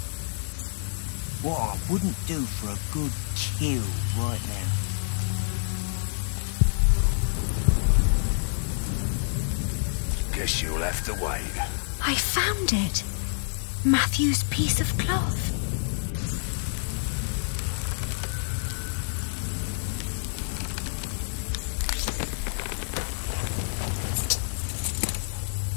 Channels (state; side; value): silent; right; digital silence